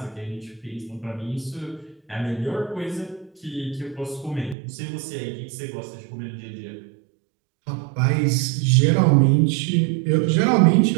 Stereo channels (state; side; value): drops out; left; at 4.5 s